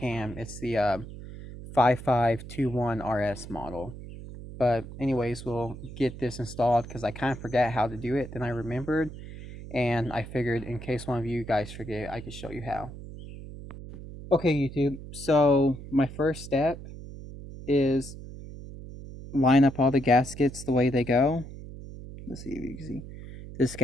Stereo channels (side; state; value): right; noise; hum, 13 dB below the sound